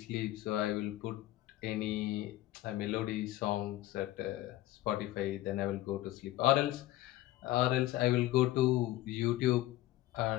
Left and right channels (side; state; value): right; quieter; 15.7 dB